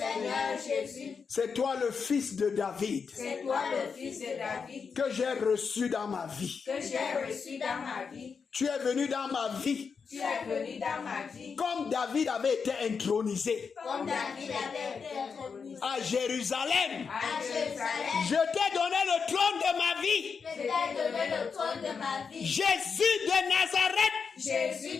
Jésus. C'est toi le fils de David. C'est toi le fils de David. Que j'ai reçu dans ma vie. Que j'ai reçu dans ma vie. Tu es venu dans ma vie. Tu es venu dans ma vie. Comme David avait été intronisé. Comme David avait été intronisé. À Jérusalem. À Jérusalem. Je t'ai donné le trône de ma vie. Je t'ai donné le trône de ma vie. Jésus de Nazareth. Jésus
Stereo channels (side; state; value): right; quieter; 5.7 dB